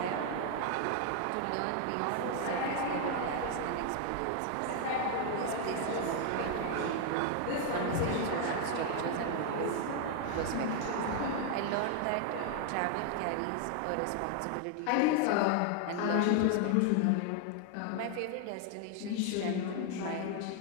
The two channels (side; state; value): both; different; correlation 0.00